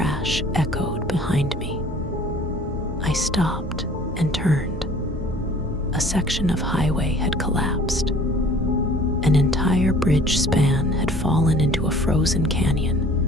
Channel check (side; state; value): both; normal; correlation 0.51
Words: echoed behind me. I stopped and turned. A section of highway had collapsed. An entire bridge span had fallen into a frozen